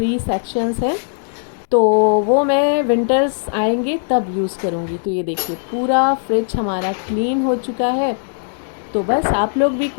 सेक्शंस हैं, तो वो मैं विंटर्स आएंगे तब यूज़ करूँगी। तो ये देखिए, पूरा फ्रिज हमारा क्लीन हो चुका है। तो बस आप लोग भी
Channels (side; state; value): right; silent; digital silence